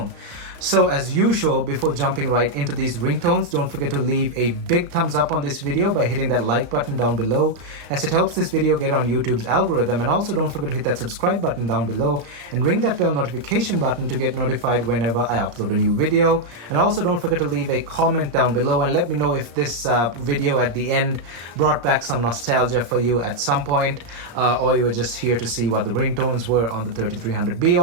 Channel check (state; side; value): late; left; 35 ms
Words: So as usual, before jumping right into these ringtones, don't forget to leave a big thumbs up on this video by hitting that like button down below, as it helps this video get on YouTube's algorithm. And also don't forget to hit that subscribe button down below and ring that bell notification button to get notified whenever I upload a new video. And also don't forget to leave a comment down below and let me know if this video at the end brought back some nostalgia for you at some point, or you were just here to see what the ringtones were on the 3300b,